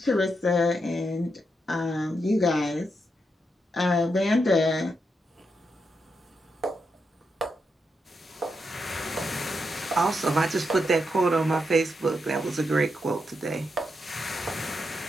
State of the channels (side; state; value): both; normal; correlation 0.83